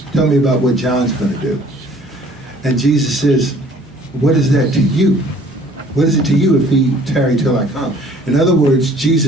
Tell me about what John's going to do. And Jesus says, what is that to you? What is it to you if he tarry till I come? In other words,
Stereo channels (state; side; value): normal; both; correlation 0.54